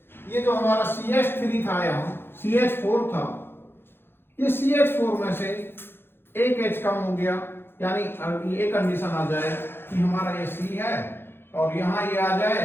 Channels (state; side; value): late; right; 0.11 ms